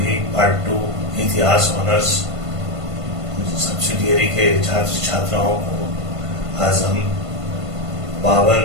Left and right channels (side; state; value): left; late; 1.5 ms